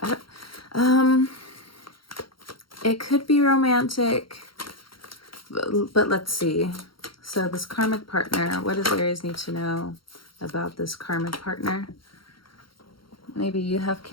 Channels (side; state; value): right; late; 0.73 ms